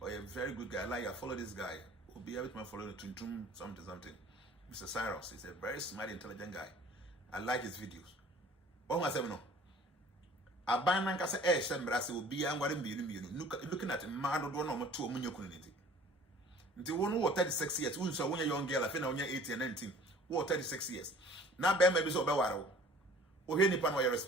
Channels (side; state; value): both; normal; correlation 0.50